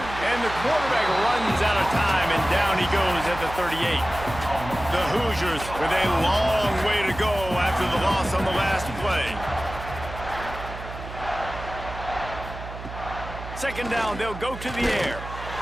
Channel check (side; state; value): right; noise; hum, 11 dB below the sound